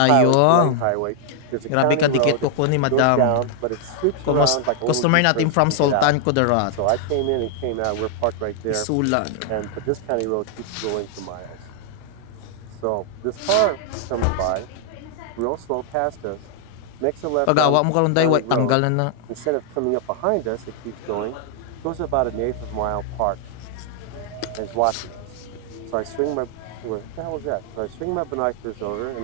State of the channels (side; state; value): both; different; correlation 0.00